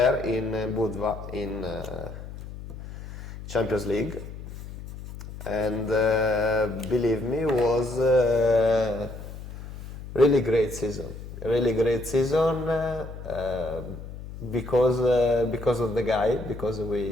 in Budva in Champions League, and believe me, was really great season. Really great season because of the guy, because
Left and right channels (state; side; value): noise; left; hum, 12 dB below the sound